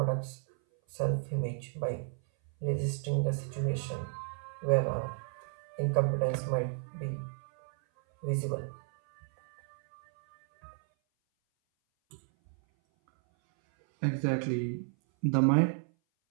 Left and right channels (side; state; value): left; silent; 56 dB below the other